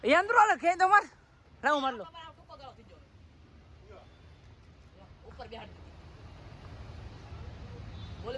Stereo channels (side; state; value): both; identical; correlation 1.00